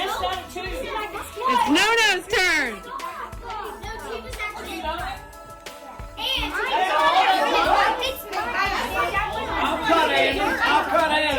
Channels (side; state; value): both; identical; correlation 1.00